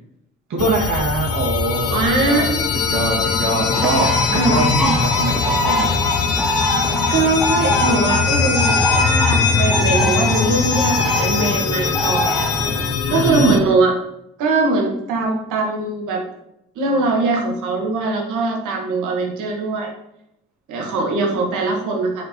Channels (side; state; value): both; normal; correlation 0.32